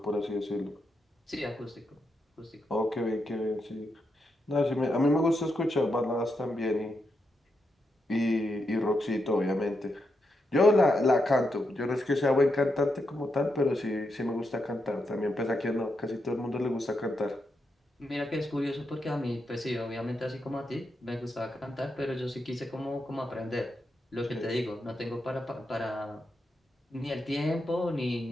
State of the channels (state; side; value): normal; both; correlation 0.84